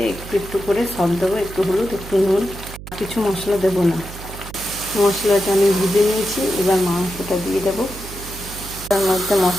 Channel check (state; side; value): noise; right; hum, 13 dB below the sound